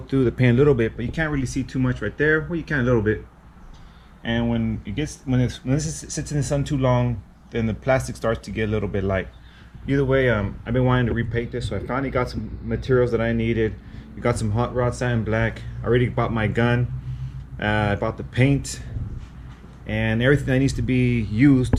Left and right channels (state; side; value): identical; both; correlation 1.00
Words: the paint a little bit, but you can't really see too much right there. Well, you can a little bit. And when this sits in the sun too long, then the plastic starts to get a little bit light. Either way, I've been wanting to repaint this, so I finally got some materials that I needed. We got some hot rod satin black. I already bought my gun. I bought the paint and everything that needs to be used